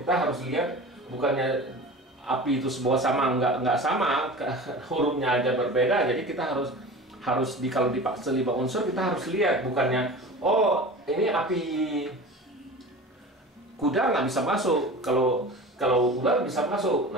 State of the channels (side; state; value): both; normal; correlation 0.35